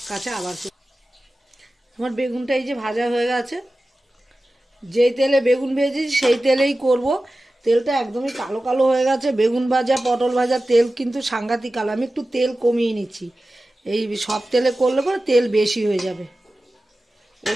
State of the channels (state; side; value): normal; both; correlation 0.95